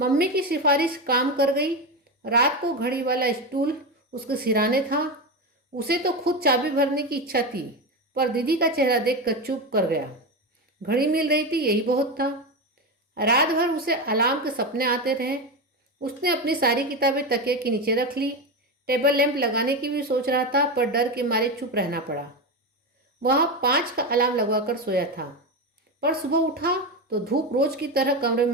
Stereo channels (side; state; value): both; normal; correlation 0.16